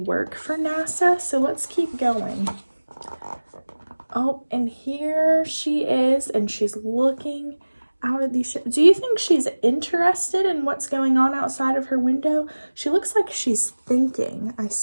for NASA. So let's keep going. Oh, and here she is, and she's looking out at these ships. Do you think she's interested in what's going on outside of her window? She looks like she's thinking. I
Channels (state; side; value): inverted; both; correlation -1.00